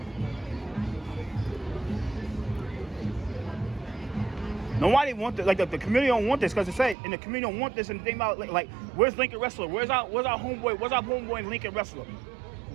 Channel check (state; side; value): drops out; left; at 7.0 s